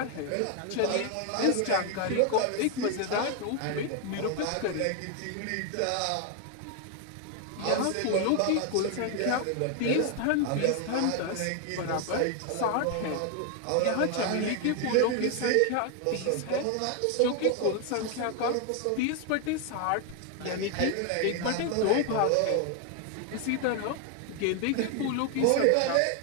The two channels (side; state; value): both; different; correlation 0.01